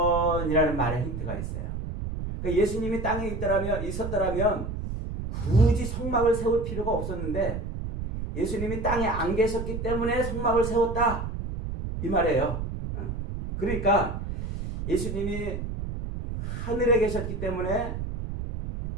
이라는 말에 힌트가 있어요. 그러니까 예수님이 땅에 있었더라면 굳이 성막을 세울 필요가 없었는데 예수님이 땅에 안 계셨기 때문에 성막을 세웠다 이 말이에요. 그러니까 예수님이 하늘에 계셨기 때문에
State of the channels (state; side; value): noise; right; rumble, 5 dB below the sound